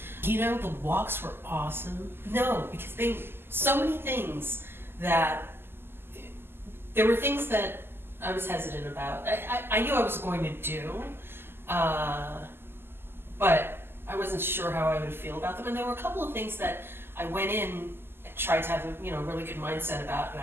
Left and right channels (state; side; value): late; left; 0.11 ms